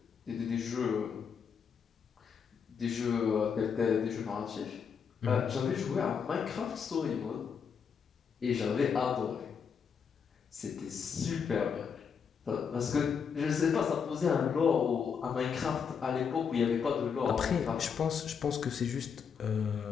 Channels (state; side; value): quieter; right; 6.6 dB